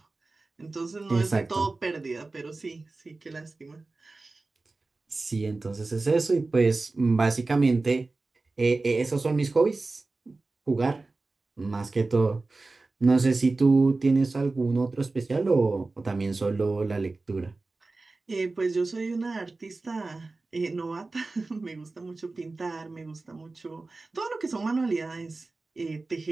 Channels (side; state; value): left; quieter; 3.5 dB